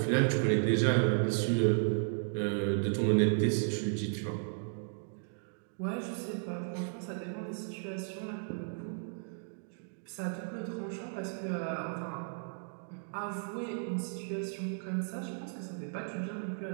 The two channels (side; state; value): left; silent; digital silence